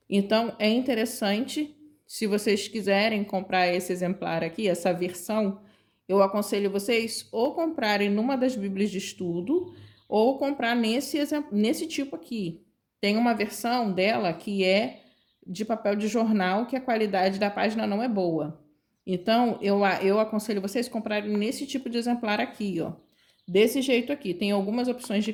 Então, é interessante, se vocês quiserem comprar esse exemplar aqui, essa versão, eu aconselho vocês ou comprarem numa das bíblias de estudo ou comprar nesse tipo aqui. Tem uma versão dela que é de papel de jornal, que a qualidade da página não é boa. Então, eu aconselho vocês comprarem nesse tipo de exemplar aqui, ó. Desse jeito aqui. Tem algumas opções de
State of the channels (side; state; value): both; identical; correlation 1.00